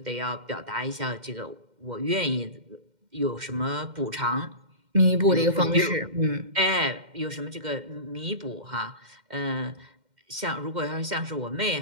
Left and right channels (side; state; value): left; late; 2.1 ms